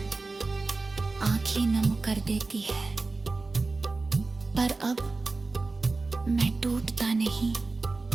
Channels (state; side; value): quieter; left; 3.7 dB